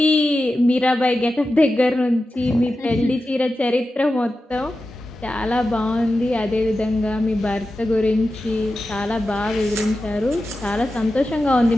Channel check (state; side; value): normal; both; correlation 0.92